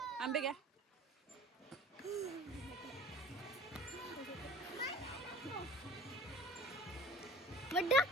आंबे घ्या. मग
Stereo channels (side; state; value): both; normal; correlation 0.43